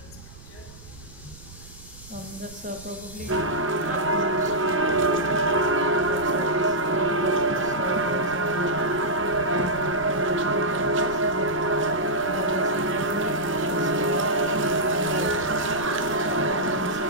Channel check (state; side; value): noise; right; rumble, 19 dB below the sound